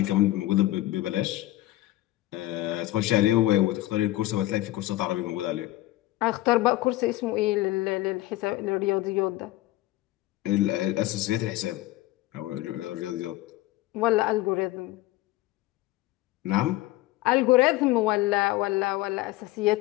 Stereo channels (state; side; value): quieter; right; 16.9 dB